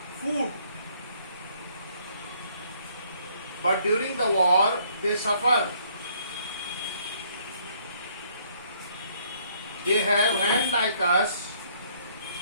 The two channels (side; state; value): both; inverted; correlation -0.65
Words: food, but during the war they suffer. They have hands like us.